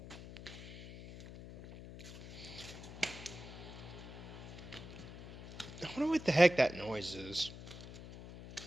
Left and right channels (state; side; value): noise; left; hum, 12 dB below the sound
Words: I wonder what the heck that noise is. I